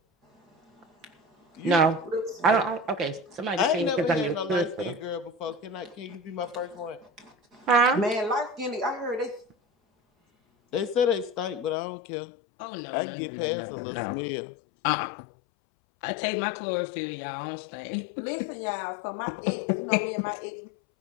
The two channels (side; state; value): right; drops out; at 11.8 s